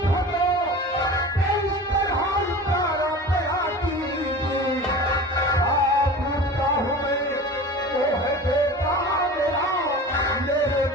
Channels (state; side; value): normal; both; correlation 0.36